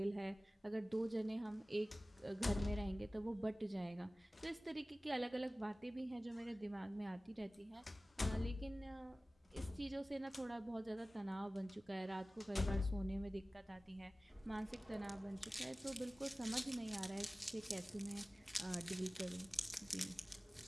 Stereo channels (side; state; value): both; normal; correlation 0.97